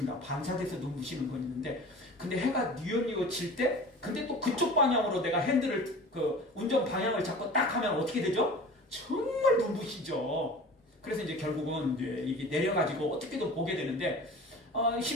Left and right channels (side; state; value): both; normal; correlation 0.39